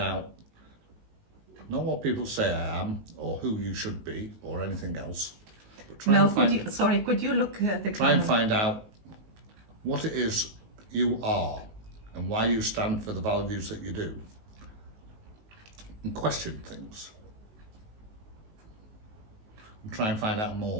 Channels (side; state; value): left; late; 19 ms